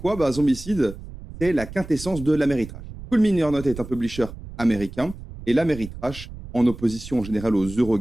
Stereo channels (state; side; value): noise; right; rumble, 13 dB below the sound